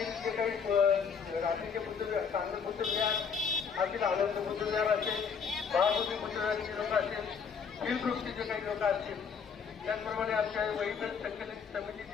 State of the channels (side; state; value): right; quieter; 6.3 dB